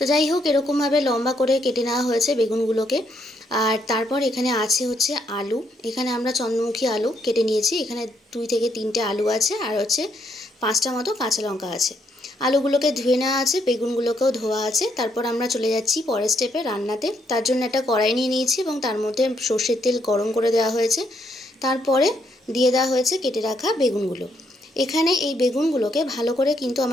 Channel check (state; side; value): normal; both; correlation 0.74